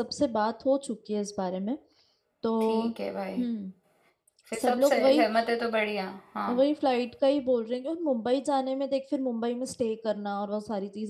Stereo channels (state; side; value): identical; both; correlation 1.00